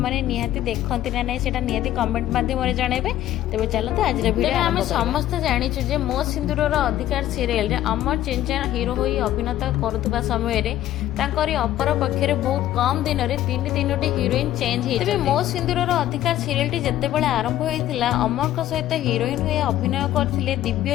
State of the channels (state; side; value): quieter; right; 13.1 dB